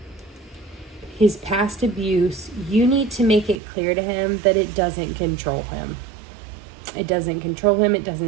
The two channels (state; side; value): drops out; left; at 3.6 s